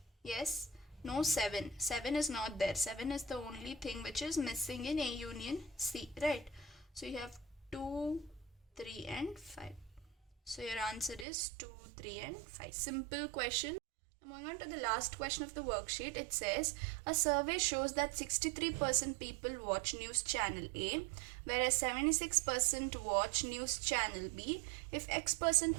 yes, No 7. 7 is not there. 7 is the only thing which is missing in A union C, right? So you have 2, 3 and 5. So your answer is 2, 3 and 5. Simple question. Moving on to the last question of the worksheet, it says a survey shows that 63% people watch news channel A, whereas 76% watch news channel B. If X%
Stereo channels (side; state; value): left; drops out; at 11.2 s